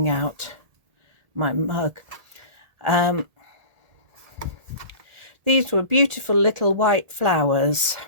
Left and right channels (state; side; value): late; left; 1.8 ms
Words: out my mug. These were beautiful little white flowers,